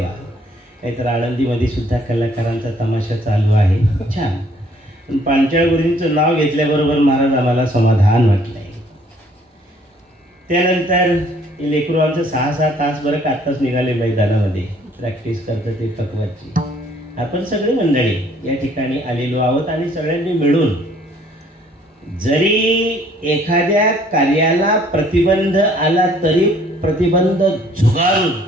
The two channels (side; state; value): both; normal; correlation 0.61